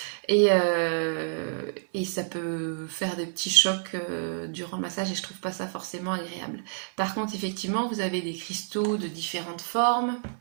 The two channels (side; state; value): left; silent; digital silence